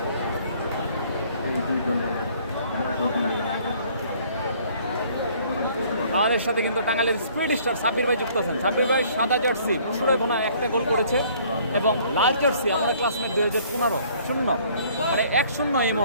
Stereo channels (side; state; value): both; inverted; correlation -0.58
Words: আমাদের সাথে কিন্তু টাঙ্গাইলের স্পিড স্টার সাব্বির ভাই যুক্ত আছেন। সাব্বির ভাই সাদা জার্সি মুশিরাগোনা একটা গোল করেছে এবং লাল জার্সি আমরা ক্লাসমেট 2015 0, মানে 1-0 এই